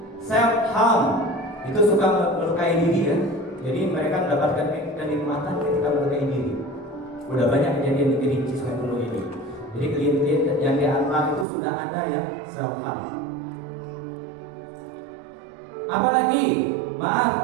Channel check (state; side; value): drops out; left; at 11.5 s